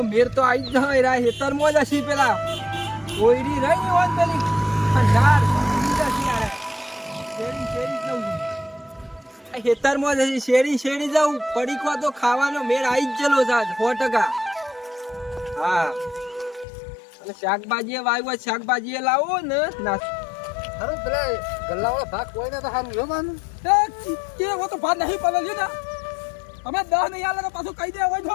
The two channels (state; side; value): drops out; right; at 16.7 s